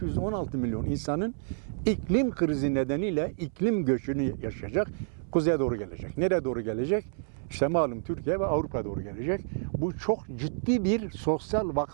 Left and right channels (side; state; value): left; silent; 58 dB below the other